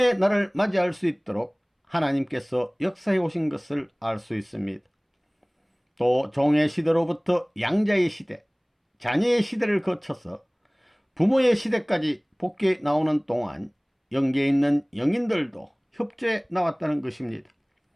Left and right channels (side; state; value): both; identical; correlation 1.00